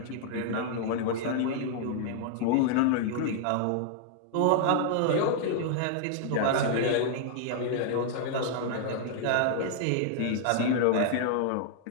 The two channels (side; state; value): both; different; correlation -0.01